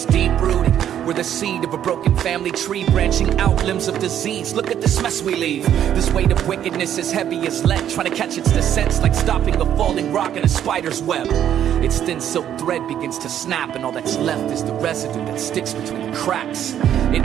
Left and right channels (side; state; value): left; quieter; 10.2 dB